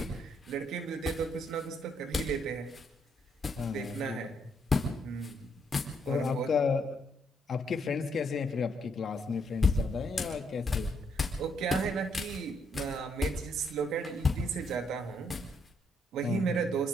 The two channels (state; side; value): normal; both; correlation 0.73